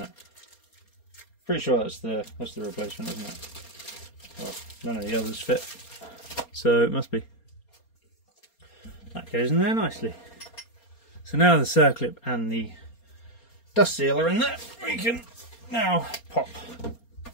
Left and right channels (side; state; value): right; late; 4.3 ms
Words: Pretty sure that's the replacement, isn't it? Well, none of the others fit, so it must be. That goes in there nicely. So now the circlip and the dust seal are in there, we can now pop